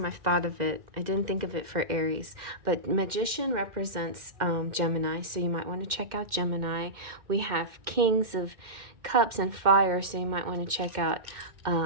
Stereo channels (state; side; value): late; left; 2.1 ms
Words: I've thought of it. I didn't think of it for Aries, but Magician represents Gemini, so you might want to check out Gemini. We have Kings of Cups and Fire, so you might want to check out,